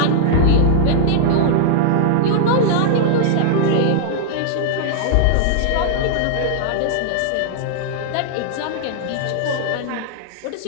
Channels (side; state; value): both; different; correlation -0.01